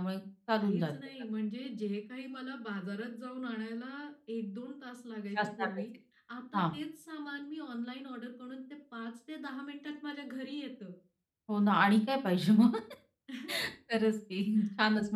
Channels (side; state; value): both; identical; correlation 1.00